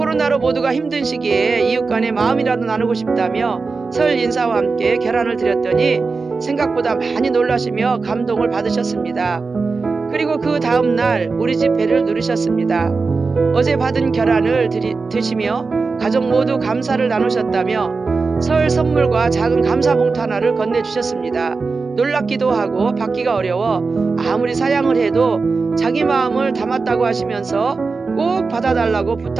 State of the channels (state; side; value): quieter; left; 4.3 dB